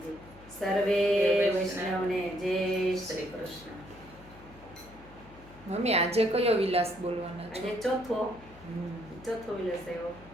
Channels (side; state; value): left; noise; hum, 21 dB below the sound